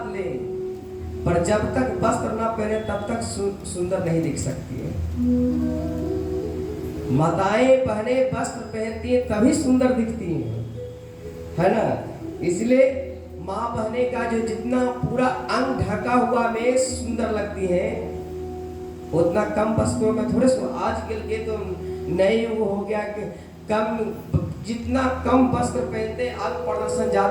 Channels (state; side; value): identical; both; correlation 1.00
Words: ले, पर जब तक वस्त्र ना पहने तब तक सुंदर नहीं दिख सकती है। माताएं पहने वस्त्र पहनती हैं तभी सुंदर दिखती हैं, है ना। इसलिए माँ बहने का जो जितना पूरा अंग ढका हुआ में सुंदर लगती है, उतना कम वस्त्रों में थोड़े आजकल के तो नए वो हो गया कि जितना कम वस्त्र पहनते हैं अंग प्रदर्शन